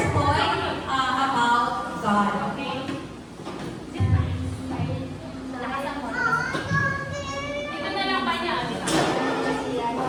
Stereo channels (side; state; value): both; identical; correlation 1.00